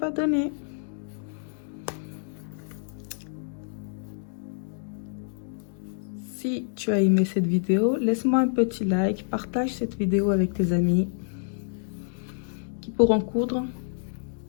donner. Si tu as aimé cette vidéo, laisse-moi un petit like, partage cette vidéo avec tes amis qui pourront coudre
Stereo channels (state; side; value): silent; right; digital silence